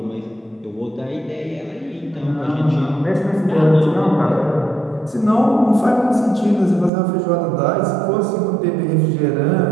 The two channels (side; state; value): left; drops out; at 6.9 s